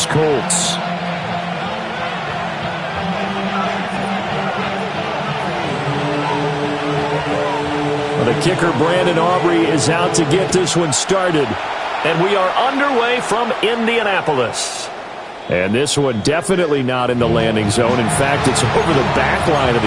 Colts. Well, the kicker, Brandon Aubrey, is out to get this one started. And we are underway from Indianapolis. And this one definitely not in the landing zone. In fact, it's over the back line of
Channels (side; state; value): both; identical; correlation 1.00